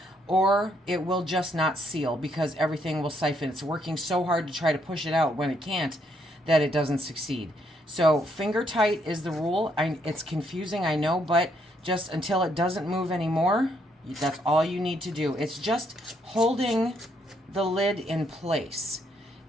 or it will just not seal, because everything will siphon. It's working so hard to try to push it out when it can't that it doesn't succeed. So finger tight is the rule. It's confusing, I know, but just until it doesn't move anymore, that's all you need to do. It's just holding the lid in place.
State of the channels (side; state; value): both; normal; correlation 0.73